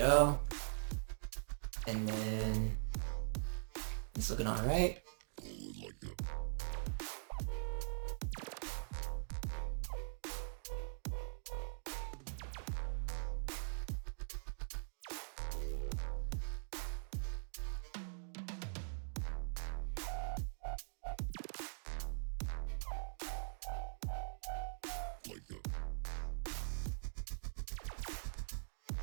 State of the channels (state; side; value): silent; left; digital silence